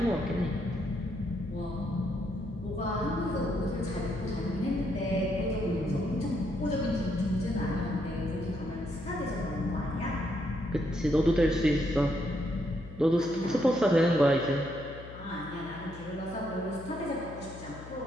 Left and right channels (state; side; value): noise; left; hum, 14 dB below the sound